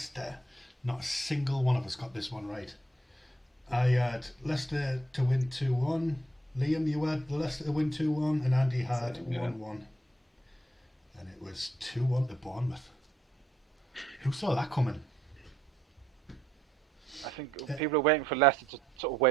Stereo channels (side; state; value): both; normal; correlation 0.74